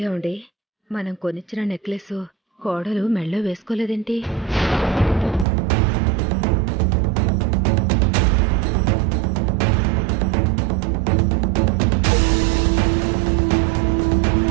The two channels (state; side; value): drops out; left; at 5.5 s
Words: మనం కొనిచ్చిన నెక్లెస్ కోడలు మెళ్ళో వేసుకోలేదేంటి?